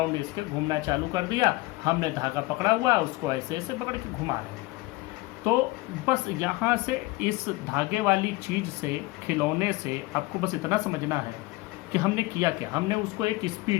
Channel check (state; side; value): quieter; right; 21.1 dB